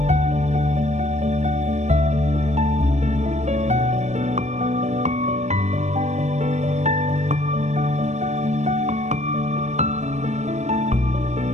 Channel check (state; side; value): late; left; 0.34 ms